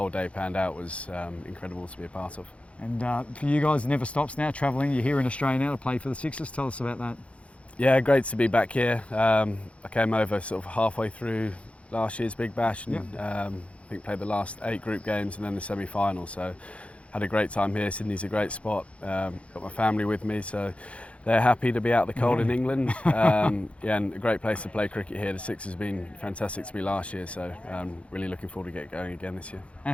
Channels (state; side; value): late; right; 0.062 ms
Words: day panned out was incredible to be a part of. And for you guys, it never stops now, travelling. You're here in Australia now to play for the Sixers. Tell us about that. Yeah, great to be back here. I came over sort of halfway through last year's Big Bash and I think played the last 8 group games and then the semi-final. So had a great time here. Sydney's a great spot. Got my family with me, so they're happy to be out the cold in England. And a great place to play cricket here. The Sixers have been fantastic to me last year, so really looking forward to get going again this year. And